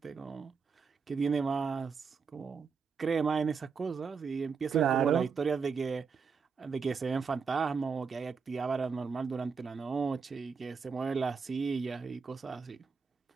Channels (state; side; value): quieter; left; 5.6 dB